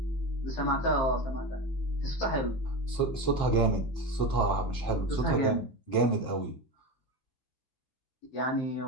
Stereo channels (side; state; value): right; late; 15 ms